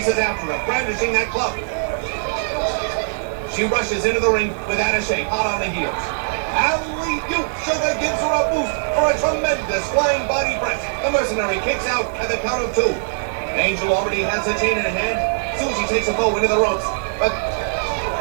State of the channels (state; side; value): silent; left; digital silence